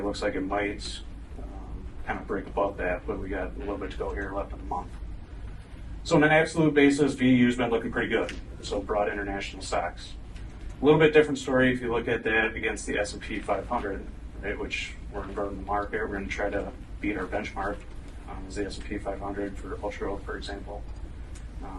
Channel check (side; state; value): both; identical; correlation 1.00